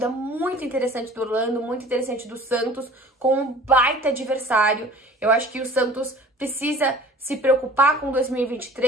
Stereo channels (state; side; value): normal; both; correlation 0.46